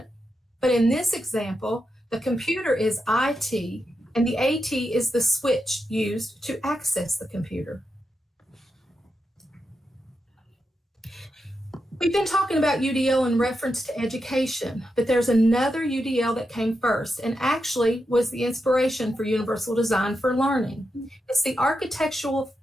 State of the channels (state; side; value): normal; both; correlation 0.87